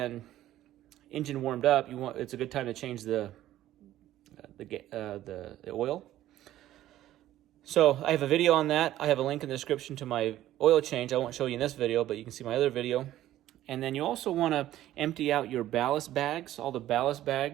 engine warmed up, it's a good time to change the oil. So I have a video on that. I have a link in the description to my oil change. I won't show you in this video, but you can see my other video. And then you also want to empty out your ballast bags, all the ballast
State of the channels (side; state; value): left; quieter; 13.6 dB